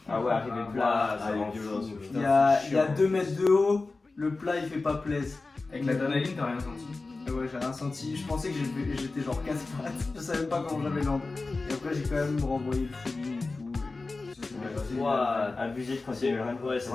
Ah ouais, arrivé plat, ça il est rend violent, fou. ce Il y a 2 mètres de haut. Le plat il fait pas plaise. Avec l'adrénaline, t'as rien senti? Ouais, j'ai rien senti. Je pensais que j'étais genre casse-pattes. Je savais pas comment j'avais l'angle. Et après, j'ai quand même renvoyé le feeling et tout. Et ça s'est bien passé. Ouah, abusé de continuer. Ouais,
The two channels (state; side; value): quieter; right; 3.6 dB